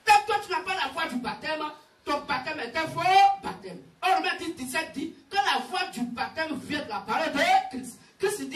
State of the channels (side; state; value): both; identical; correlation 1.00